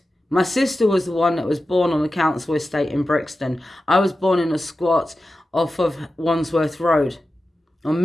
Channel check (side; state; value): both; normal; correlation 0.93